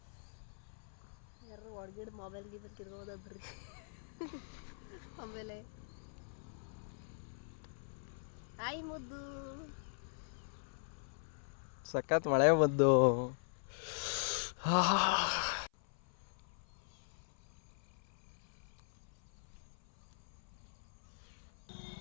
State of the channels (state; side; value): silent; right; 51 dB below the other